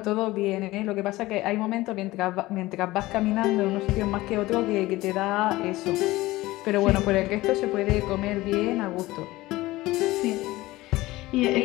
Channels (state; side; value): quieter; right; 18.6 dB